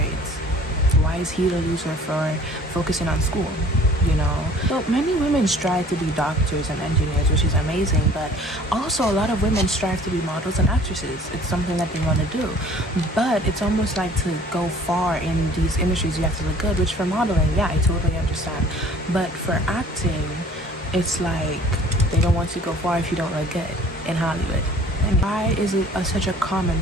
Why is he the loser for focusing on school? So many women strive to be doctors and engineers, which is amazing, but also a lot of women strive to be models and actresses. It's something that they want to do, but it's almost like to go far in these industries you have to look good, which for modeling, yeah, I totally understand, but for acting, it's like they don't want to go far if you don't look good in Hollywood. And why is it such a common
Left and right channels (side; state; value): both; normal; correlation 0.51